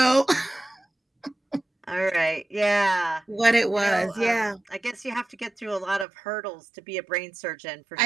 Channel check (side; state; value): left; drops out; at 6.1 s